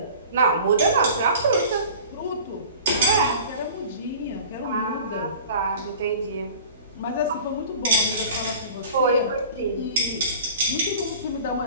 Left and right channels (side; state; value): both; inverted; correlation -0.42